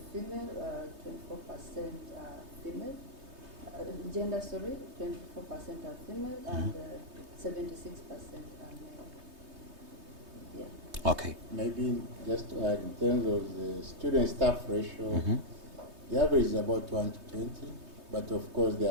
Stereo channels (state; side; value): late; left; 3.2 ms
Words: female, 24% are female. Gender, sorry, 24% are female, and 76% are male. Yeah. Okay. Maybe just to add, in terms of the student-staff ratio, the average is about 1 to 20, but of course there